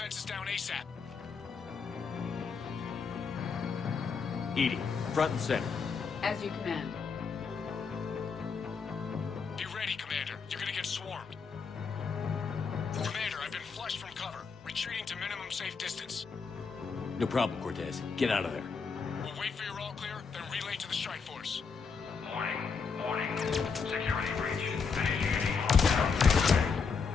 down ASAP. EDI, front and center. As you command. Be ready, Commander. You're gonna get swarmed. Commander, I've been flushed from cover. Retreating to minimum safe distance. No problem, Cortez. Get out of there. We'll wait for your all clear, then relay to the strike force. Warning. Security breach.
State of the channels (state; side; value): quieter; right; 5.4 dB